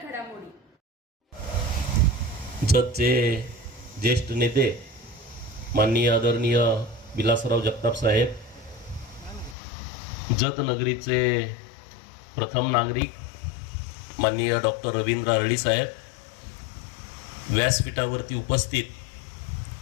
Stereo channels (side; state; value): right; drops out; at 9.6 s